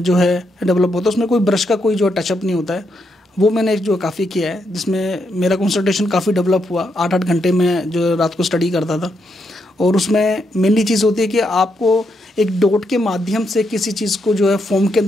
है डेवलप होता है। उसमें कोई ब्रश का कोई जो टचअप नहीं होता है। वो मैंने जो काफ़ी किया है, जिसमें मेरा कंसंट्रेशन काफ़ी डेवलप हुआ। 8-8 घंटे में जो रात को स्टडी करता था, और उसमें मेनली चीज़ होती है कि आपको एक डॉट के माध्यम से किसी चीज़ को जो है फॉर्म के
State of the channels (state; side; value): normal; both; correlation 0.80